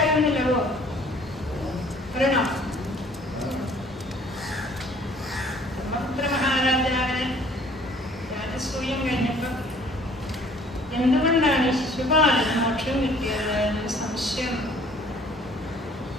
എന്തുകൊണ്ടാണ് ശിശുപാലന് മോക്ഷം കിട്ടിയത് എന്നൊരു സംശയം.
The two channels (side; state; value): both; normal; correlation 0.55